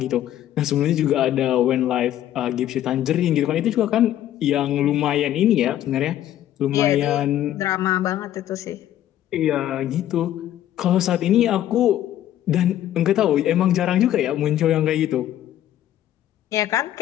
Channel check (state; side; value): quieter; right; 12.2 dB